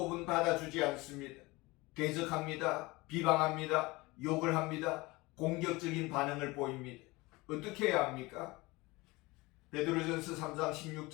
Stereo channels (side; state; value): right; quieter; 22.5 dB